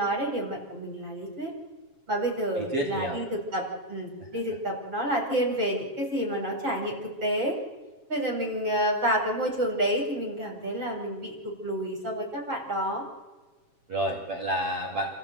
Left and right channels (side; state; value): left; late; 7.3 ms